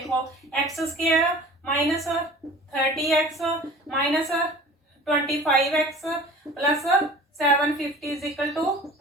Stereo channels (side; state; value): both; normal; correlation 0.43